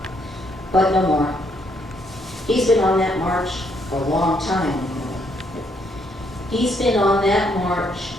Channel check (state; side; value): normal; both; correlation 0.72